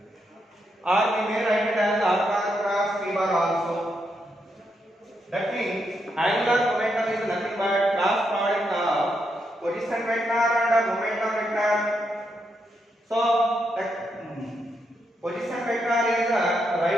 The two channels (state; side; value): normal; both; correlation 0.81